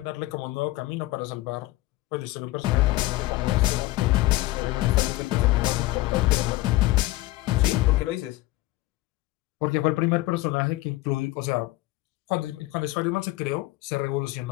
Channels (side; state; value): right; quieter; 18.6 dB